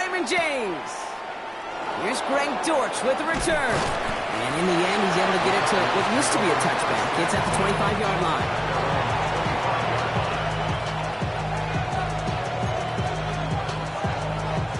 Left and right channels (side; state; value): both; identical; correlation 1.00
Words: James. Here's Greg Dortch with the return. And in the end, he's able to get it to what used to be a touchback. It's at the 25-yard line.